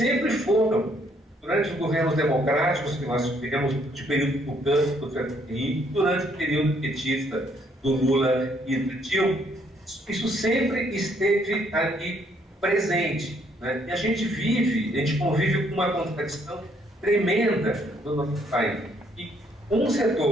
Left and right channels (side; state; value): both; normal; correlation 0.68